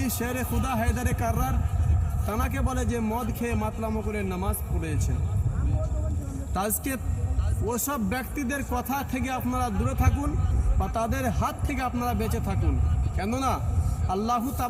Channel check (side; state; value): both; identical; correlation 1.00